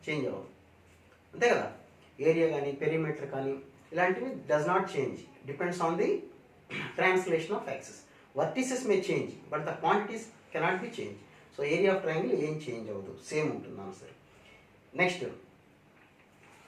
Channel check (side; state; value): both; identical; correlation 1.00